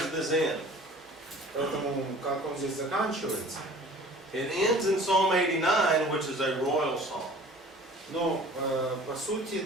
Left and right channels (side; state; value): both; normal; correlation 0.46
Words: this end? Поэтому как он здесь заканчивается? It ends in Psalm 89, which is a royal psalm. Но по сути